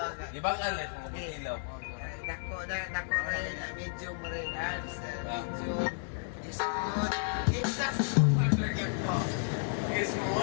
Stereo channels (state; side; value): silent; right; digital silence